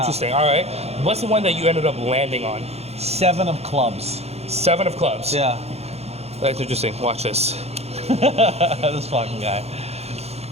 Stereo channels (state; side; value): late; left; 0.30 ms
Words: All right. What's the one that you ended up landing on? 7 of clubs. 7 of clubs. Yeah. That's interesting. Watch this. This fucking guy.